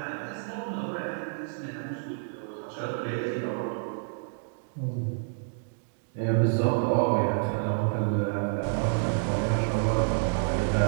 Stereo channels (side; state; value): left; silent; digital silence